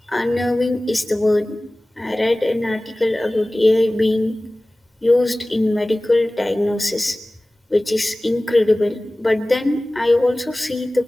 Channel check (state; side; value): normal; both; correlation 0.98